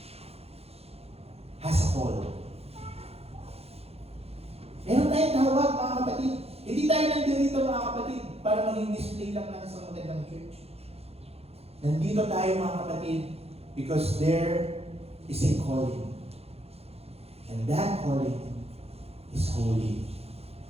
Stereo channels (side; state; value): left; late; 0.29 ms